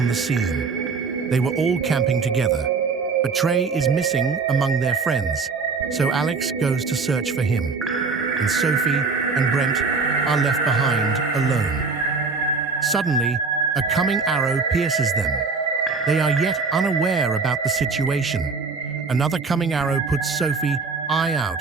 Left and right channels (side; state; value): left; quieter; 4.6 dB